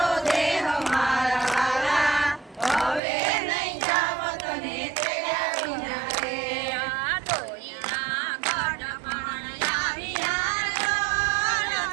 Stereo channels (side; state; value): left; drops out; at 3.0 s